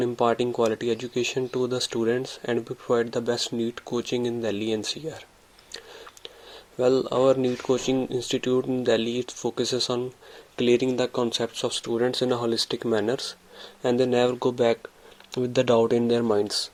imparting quality education to the students and we provide the best NEET coaching in Delhi NCR. Well, our NEET coaching institute in Delhi focuses on clearing the concepts of students in a holistic manner and they never go back with the doubt in their minds.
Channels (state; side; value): identical; both; correlation 1.00